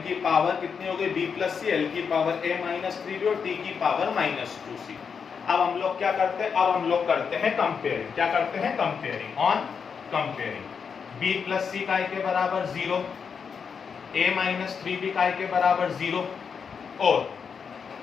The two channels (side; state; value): right; quieter; 6.3 dB